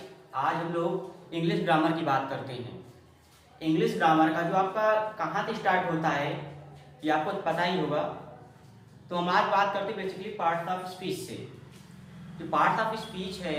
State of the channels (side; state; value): both; identical; correlation 1.00